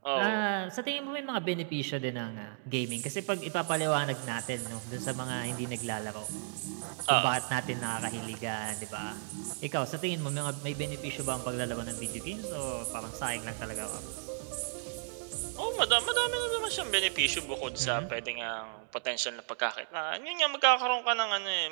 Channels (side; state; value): left; silent; digital silence